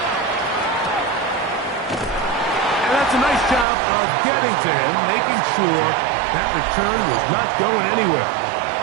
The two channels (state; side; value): drops out; left; at 3.7 s